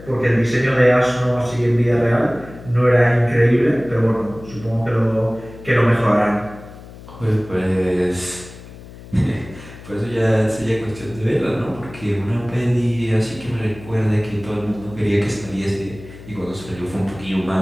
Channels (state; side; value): noise; left; hum, 17 dB below the sound